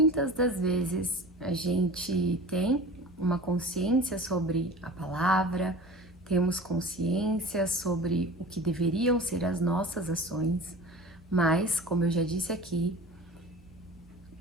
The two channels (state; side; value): normal; both; correlation 0.38